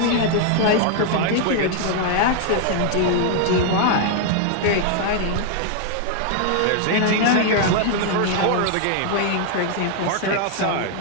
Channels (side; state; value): both; different; correlation 0.00